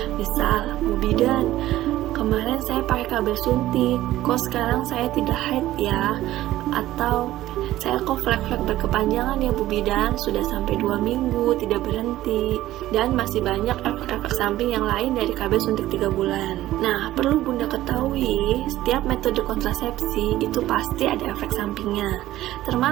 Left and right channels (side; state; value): left; quieter; 14.9 dB